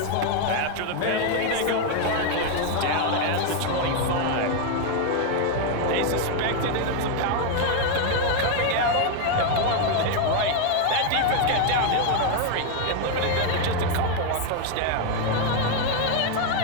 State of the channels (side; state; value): both; different; correlation 0.01